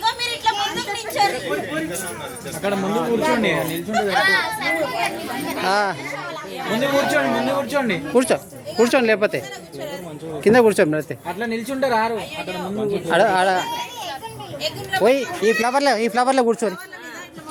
అక్కడ ముందు కూర్చోండి నిల్చుంటే ముందు కూర్చోండి కూర్చోండి లేకపోతే కింద కూర్చోండి అయితే అట్లా నిల్చుంటే రారు అక్కడ ముందు పోయి ఈ ఫ్లవర్లో కూర్చోండి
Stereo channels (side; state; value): both; identical; correlation 1.00